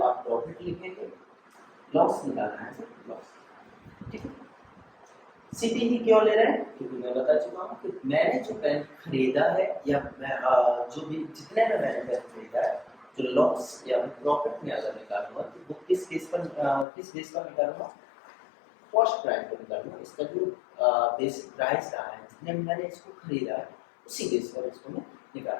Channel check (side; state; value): right; drops out; at 16.9 s